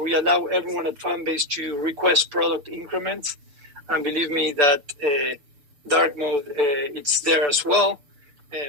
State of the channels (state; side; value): late; left; 6.8 ms